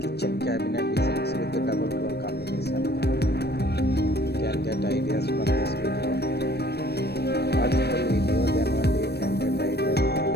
kitchen cabinet designs with the double door combination. You can get ideas from this video. Watch the video, then only you can get ideas from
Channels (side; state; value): right; late; 0.47 ms